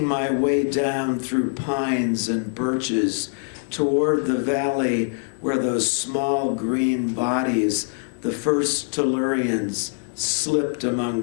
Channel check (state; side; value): silent; right; 63 dB below the other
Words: my way down through pines and birches toward the valley where those small green bodies, the first Tellurians, slipped among